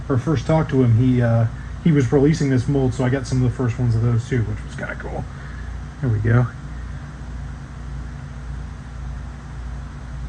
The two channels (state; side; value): identical; both; correlation 1.00